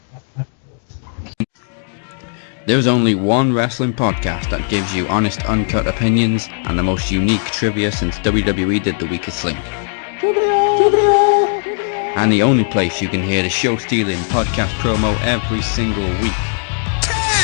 right after this. There's only one wrestling podcast that gives you honest, uncut opinions and the most unique trivia since WWE did The Weakest Link. And the only place you can hear the show-stealing podcast promo every single week.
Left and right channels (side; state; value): right; silent; 61 dB below the other